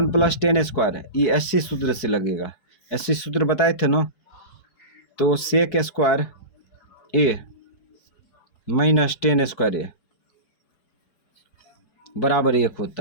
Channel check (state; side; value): late; right; 4.8 ms